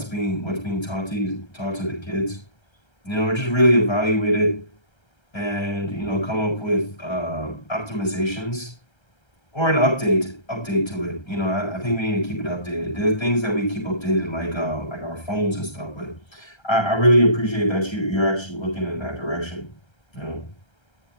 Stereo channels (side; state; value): right; late; 1.3 ms